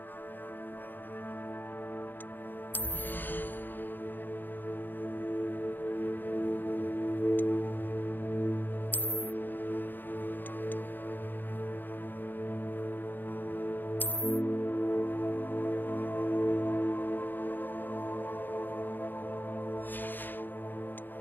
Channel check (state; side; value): late; right; 0.091 ms